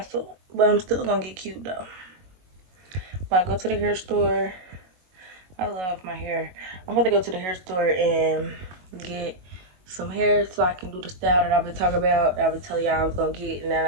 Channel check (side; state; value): left; late; 22 ms